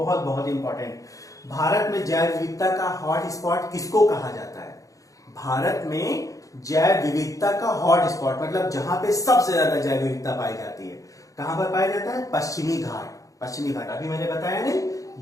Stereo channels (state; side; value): late; right; 0.16 ms